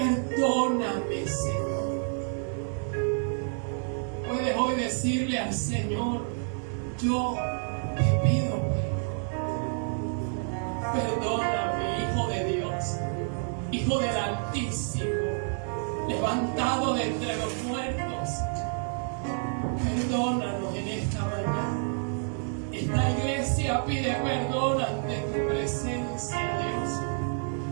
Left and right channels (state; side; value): silent; left; 57 dB below the other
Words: Señor. Puedes hoy decirle al Señor: yo te pido perdón. Perdóname, Hijo de Dios, Hijo del Altísimo, levantado de entre los muertos. Perdónanos en esta mañana. Esta iglesia pide perdón ante tu presencia, Dios.